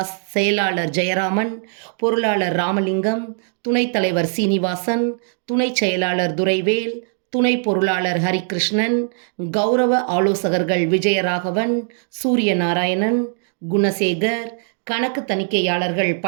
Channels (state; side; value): silent; left; 57 dB below the other